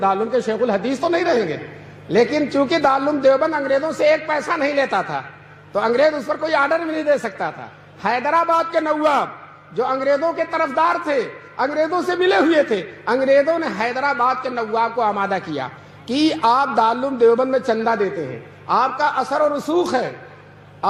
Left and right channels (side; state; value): both; identical; correlation 1.00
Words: کے شیخ الحدیث تو نہیں رہیں گے۔ لیکن چونکہ دارالعلوم دیوبند انگریزوں سے ایک پیسہ نہیں لیتا تھا تو انگریز اس پر کوئی آرڈر بھی نہیں دے سکتا تھا۔ حیدرآباد کے نواب جو انگریزوں کے طرفدار تھے، انگریزوں سے ملے ہوئے تھے، انگریزوں نے حیدرآباد کے نواب کو آمادہ کیا کہ آپ دارالعلوم دیوبند میں چندہ دیتے ہیں، آپ کا اثر و رسوخ ہے،